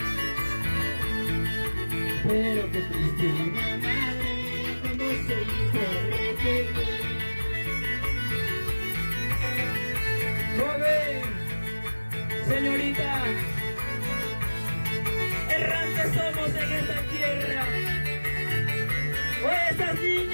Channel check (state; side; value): inverted; both; correlation -1.00